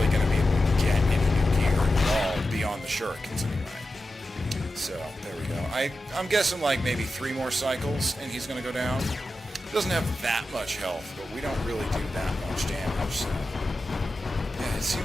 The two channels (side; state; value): both; normal; correlation 0.92